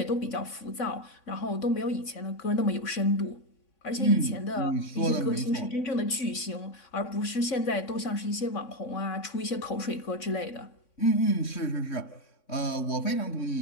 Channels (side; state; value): right; late; 3.6 ms